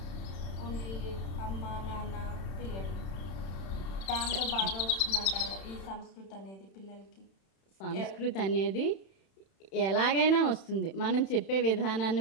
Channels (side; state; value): right; late; 31 ms